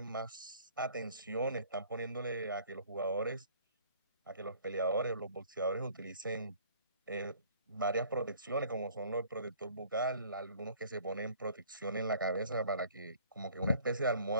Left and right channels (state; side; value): inverted; both; correlation -0.54